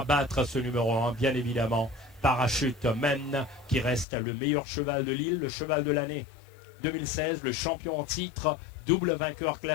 battre ce numéro 1, bien évidemment. Parachuteman, qui reste le meilleur cheval de l'île, le cheval de l'année 2016, le champion en titre, double vainqueur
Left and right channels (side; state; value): right; drops out; at 4.0 s